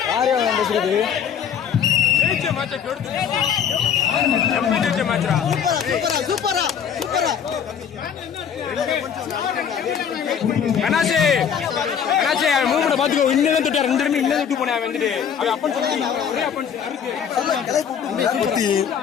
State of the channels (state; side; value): quieter; right; 7.9 dB